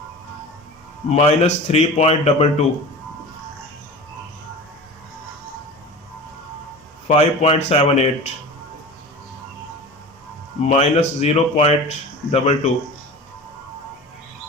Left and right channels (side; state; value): both; normal; correlation 0.35